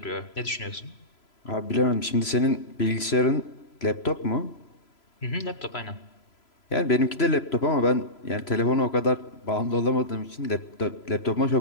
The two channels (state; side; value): late; right; 3.0 ms